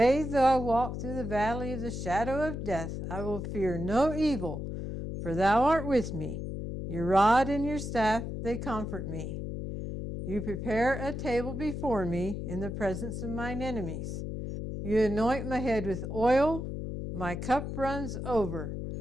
though I walk through the valley of the shadow of death, I will fear no evil, for thou art with me. Your rod and your staff, they comfort me. You prepare a table before me in the presence of mine enemies. You anoint my head with oil, my cup runs over.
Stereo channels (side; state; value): left; noise; hum, 5 dB below the sound